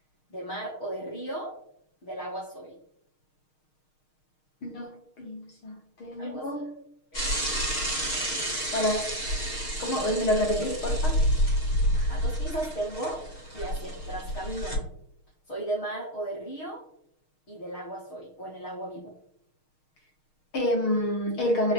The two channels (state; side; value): late; right; 6.5 ms